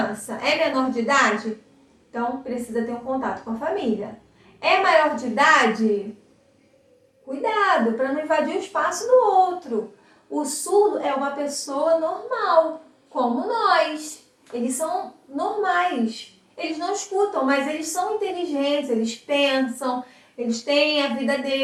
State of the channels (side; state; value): both; identical; correlation 1.00